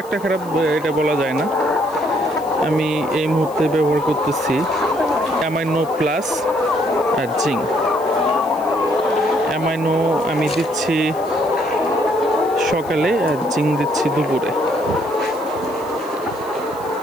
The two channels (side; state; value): left; noise; hiss, 22 dB below the sound